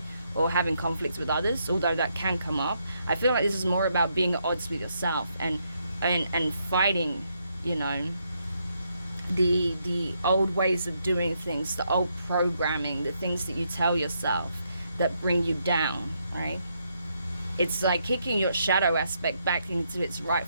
or having conflicts with others, although that can come up, I feel like this is more about being at odds with yourself and fighting, the old ways of doing things, the old programming, the things that you tell yourself that bring you down, right? It's like kicking your shadow aspect back into its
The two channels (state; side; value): inverted; both; correlation -0.77